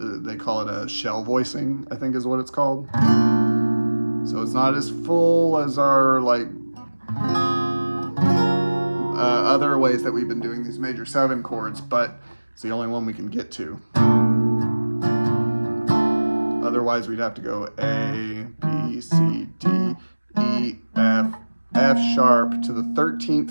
They call it a shell voicing, I think is what it's called. So it's not as full as our other ways that we've been doing these major 7 chords, but it's the only one we can get to. Otherwise we'd have to go A, B, C, D, E, F, F sharp to the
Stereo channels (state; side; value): inverted; both; correlation -1.00